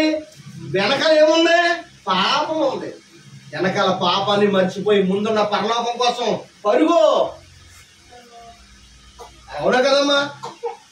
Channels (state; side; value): identical; both; correlation 1.00